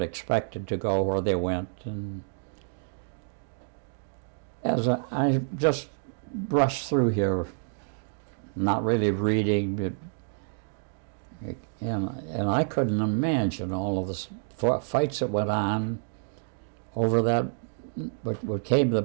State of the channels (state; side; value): silent; left; digital silence